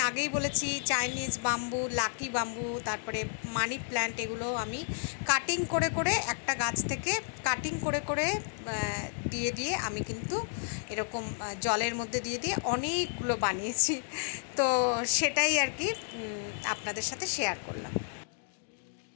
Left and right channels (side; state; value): right; silent; digital silence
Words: আগেই বলেছি, চাইনিজ বাম্বু, লাকি বাম্বু, তারপরে মানি প্ল্যান্ট, এগুলো আমি কাটিং করে করে একটা গাছ থেকে কাটিং করে করে দিয়ে আমি কিন্তু এরকম জলের মধ্যে দিয়ে অনেকগুলো বানিয়েছি। তো সেটাই আর কি আপনাদের সাথে শেয়ার করলাম।